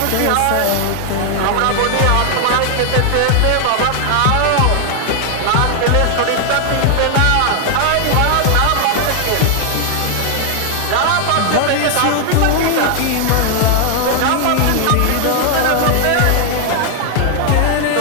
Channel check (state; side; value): different; both; correlation 0.00